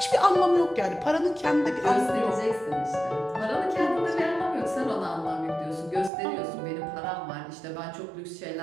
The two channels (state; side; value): drops out; left; at 6.1 s